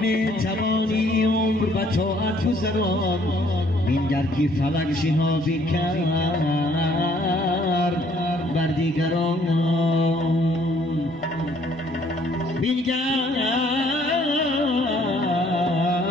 توانی عمر و طاعت گذران بینگر که فلک شهابی کرد بر دیگران بینگر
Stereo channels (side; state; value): both; normal; correlation 0.63